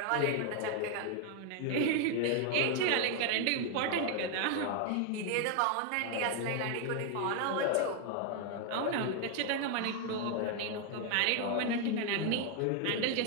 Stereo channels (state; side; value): different; both; correlation 0.01